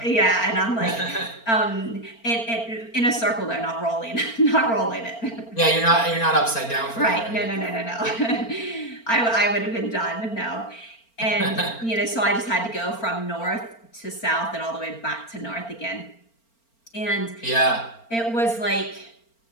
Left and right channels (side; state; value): right; late; 4.4 ms